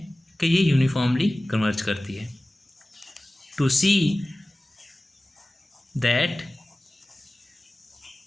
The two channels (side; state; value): both; normal; correlation 0.97